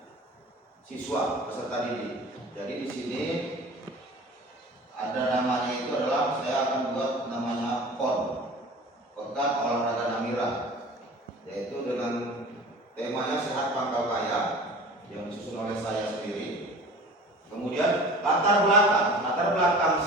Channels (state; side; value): normal; both; correlation 0.41